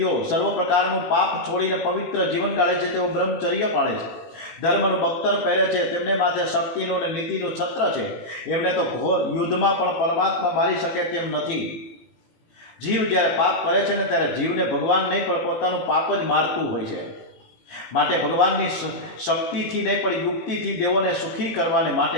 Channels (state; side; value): late; right; 18 ms